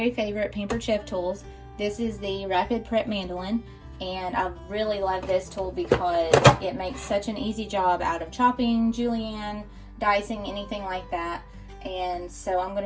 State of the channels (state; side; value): identical; both; correlation 1.00